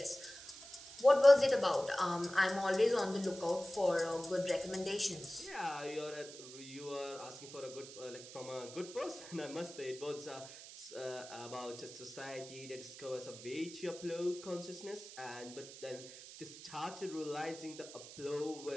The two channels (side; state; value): right; noise; hiss, 14 dB below the sound